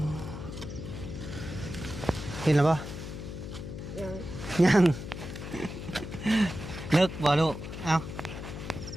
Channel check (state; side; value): noise; left; hum, 8 dB below the sound